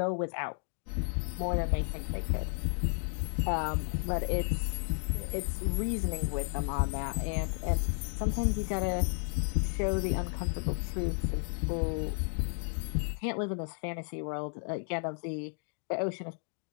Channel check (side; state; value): right; silent; 56 dB below the other